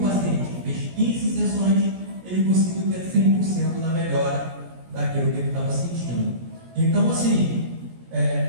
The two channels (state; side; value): late; left; 17 ms